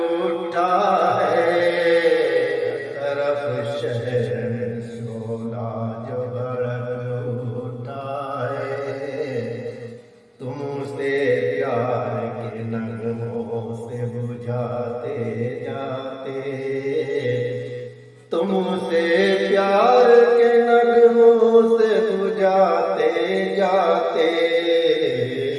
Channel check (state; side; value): identical; both; correlation 1.00